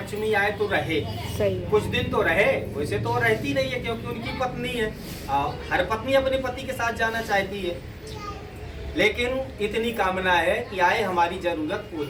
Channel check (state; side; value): identical; both; correlation 1.00